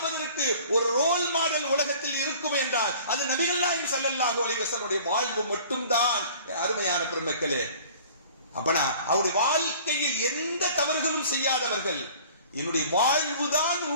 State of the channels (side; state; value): both; inverted; correlation -0.48